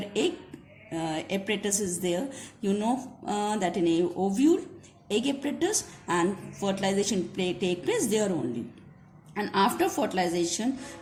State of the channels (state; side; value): identical; both; correlation 1.00